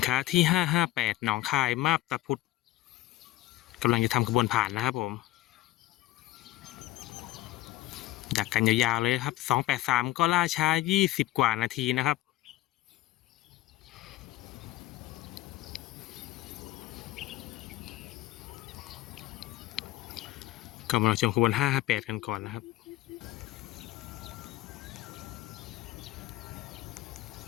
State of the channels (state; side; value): quieter; right; 16.0 dB